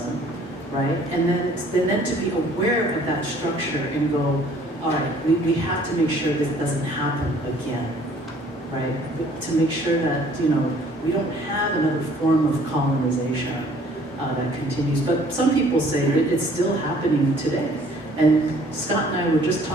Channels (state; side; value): normal; both; correlation 0.57